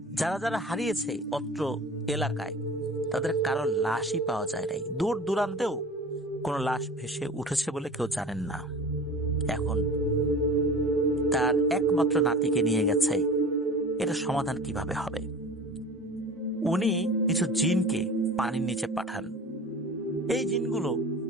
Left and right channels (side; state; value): both; normal; correlation 0.39